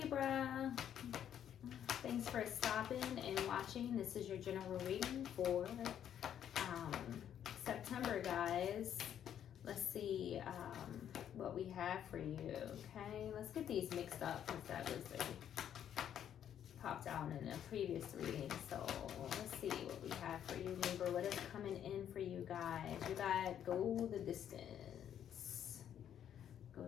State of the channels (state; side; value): quieter; right; 9.8 dB